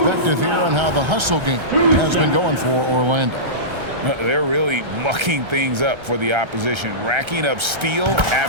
here on how the hustle game has been going for Orlando. They're really mucking things up for the opposition, racking up steal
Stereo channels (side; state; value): left; late; 1.3 ms